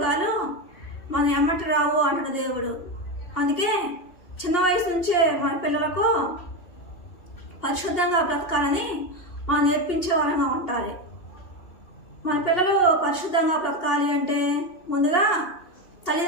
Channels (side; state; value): right; late; 2.8 ms